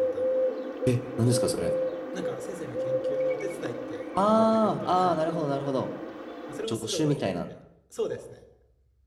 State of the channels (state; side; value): identical; both; correlation 1.00